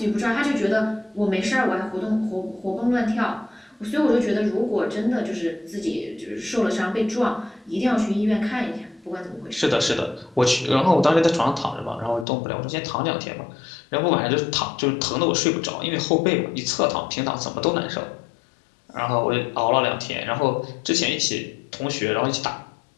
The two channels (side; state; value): right; drops out; at 12.2 s